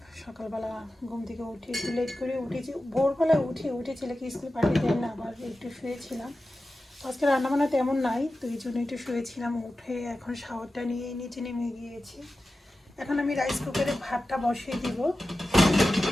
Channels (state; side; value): normal; both; correlation 0.94